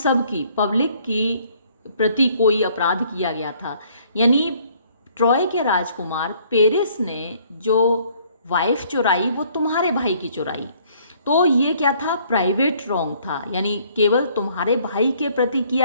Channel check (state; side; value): inverted; both; correlation -0.61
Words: की, पब्लिक की प्रति कोई अपराध किया गया था। यानी ट्रॉय के राजकुमार पेरिस ने जो वाइफ चुराई वो तुम्हारे भाई की चुराई, तो ये क्या था? प्राइवेट रॉन्ग था, यानी केवल तुम्हारे भाई के प्रति